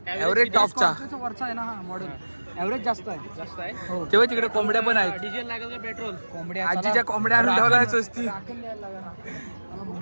एव्हरेज टॉपचा वरचा आहे ना हा मॉडेल एव्हरेज जास्त आहे हो तेव्हा तिकडे कोंबड्या पण आहेत डिझेल लागेल का पेट्रोल कोंबड्या आजीच्या कोंबड्या आणून ठेवल्या स्वस्ती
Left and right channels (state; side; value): inverted; both; correlation -1.00